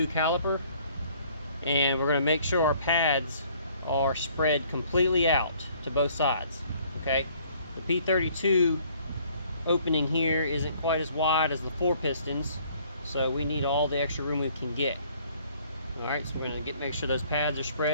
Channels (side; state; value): both; inverted; correlation -0.59